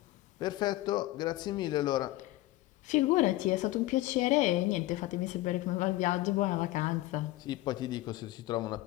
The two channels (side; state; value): right; quieter; 17.1 dB